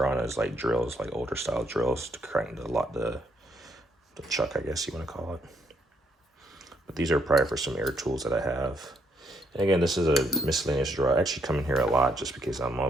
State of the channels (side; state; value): both; normal; correlation 0.73